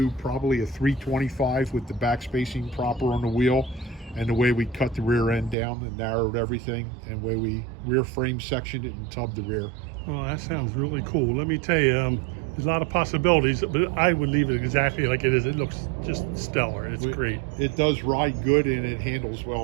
probably a 325 with the back spacing proper on the wheel, and the way we cut the rear end down and narrowed everything, and the way we rear frame sectioned it and tubbed the rear. Well, that sounds really cool. Let me tell you, there's a lot of possibilities, but I would leave it exactly like it is. It looks just stellar. It's great. It does ride good, and it handles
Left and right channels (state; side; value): drops out; left; at 5.6 s